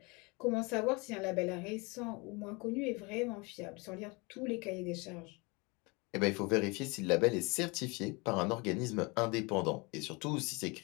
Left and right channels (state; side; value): quieter; right; 27.7 dB